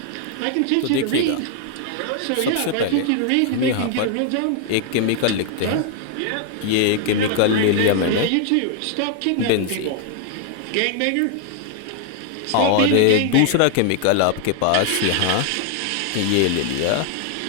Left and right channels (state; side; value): different; both; correlation 0.00